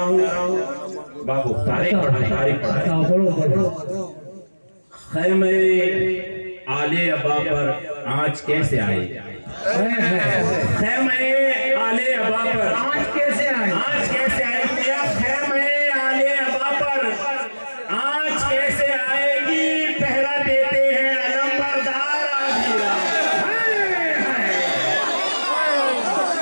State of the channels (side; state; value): both; inverted; correlation -1.00